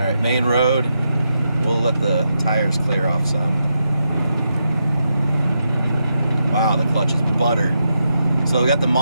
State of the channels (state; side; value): inverted; both; correlation -0.84